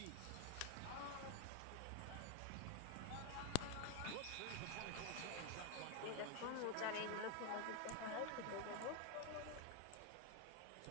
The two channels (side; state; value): both; different; correlation 0.01